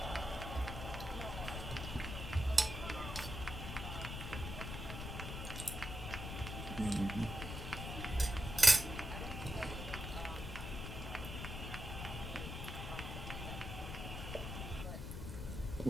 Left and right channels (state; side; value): noise; left; rumble, 6 dB below the sound